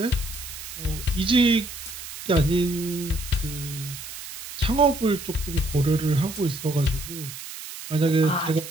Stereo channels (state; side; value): noise; right; hiss, 11 dB below the sound